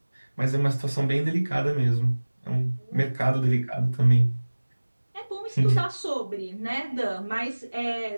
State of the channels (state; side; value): inverted; both; correlation -1.00